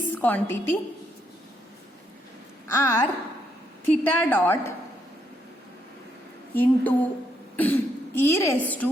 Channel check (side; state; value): both; normal; correlation 0.75